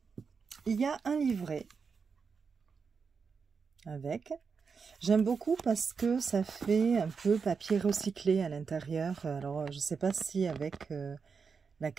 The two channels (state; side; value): quieter; left; 5.5 dB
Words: il y a un livret avec. J'aime beaucoup parce que ça fait un peu papier recyclé à l'intérieur. Alors, je ne sais pas si avec la